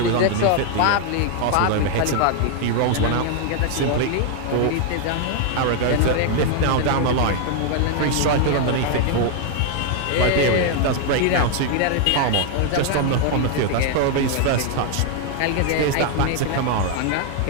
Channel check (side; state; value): both; different; correlation 0.00